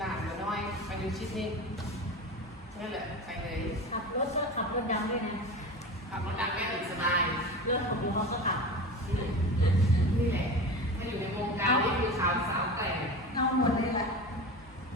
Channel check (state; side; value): normal; both; correlation 0.30